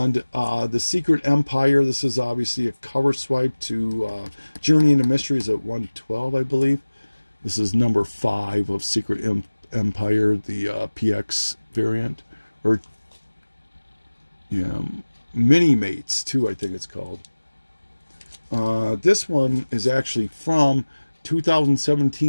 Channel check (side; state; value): both; inverted; correlation -1.00